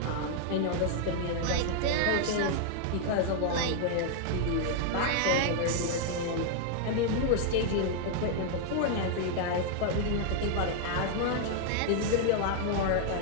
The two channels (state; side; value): different; both; correlation 0.00